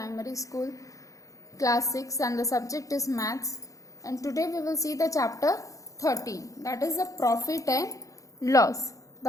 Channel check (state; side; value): late; right; 0.16 ms